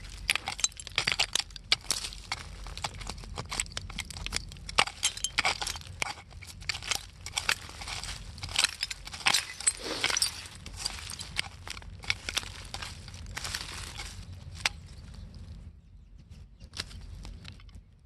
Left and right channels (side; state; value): both; identical; correlation 1.00